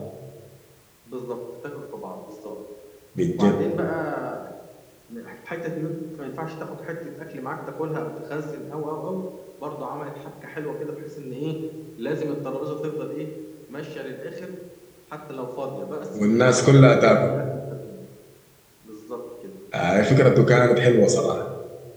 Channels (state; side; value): identical; both; correlation 1.00